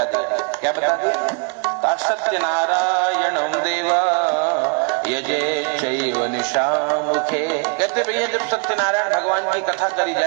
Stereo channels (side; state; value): left; quieter; 36.3 dB